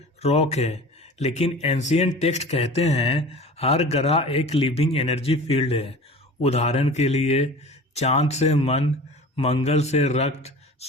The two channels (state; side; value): normal; both; correlation 0.39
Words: रॉक है, लेकिन एंशिएंट टेक्स्ट कहते हैं हर ग्रह एक लिविंग एनर्जी फील्ड है। उदाहरण के लिए, चांद से मन, मंगल से रक्त,